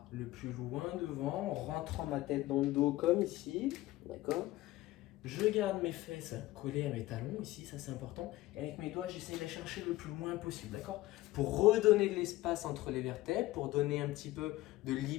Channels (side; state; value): right; quieter; 17.3 dB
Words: le plus loin devant, en rentrant ma tête dans le dos comme ici. D'accord? Je garde mes fesses collées à mes talons, ici, ça c'est important. Et avec mes doigts, j'essaie de les chercher le plus loin possible, d'accord? Pour redonner de l'espace entre les vertèbres, pour donner un petit peu de